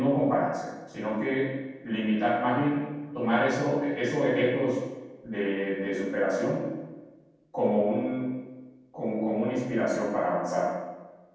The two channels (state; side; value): identical; both; correlation 1.00